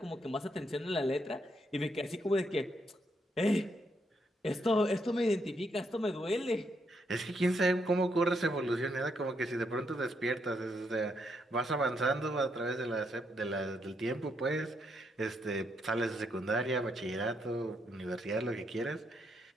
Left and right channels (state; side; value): normal; both; correlation 0.77